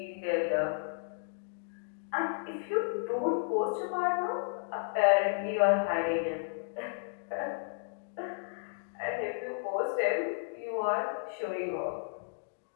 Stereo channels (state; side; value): silent; right; digital silence